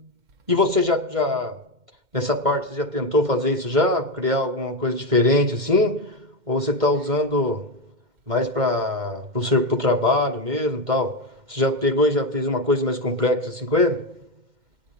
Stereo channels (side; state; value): left; late; 2.1 ms